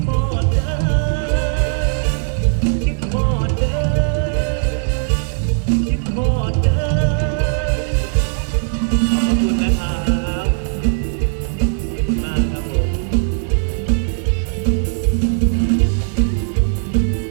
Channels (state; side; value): silent; left; digital silence